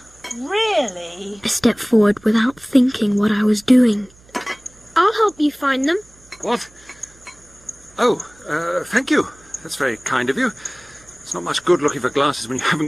really? I stepped forward without thinking what I was doing. I'll help you find them. What? Oh, thank you. That's very kind of you. It's not much good looking for glasses when you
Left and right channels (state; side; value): noise; right; hum, 27 dB below the sound